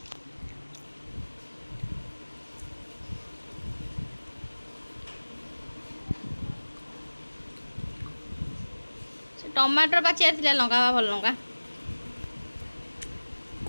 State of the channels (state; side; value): inverted; both; correlation -1.00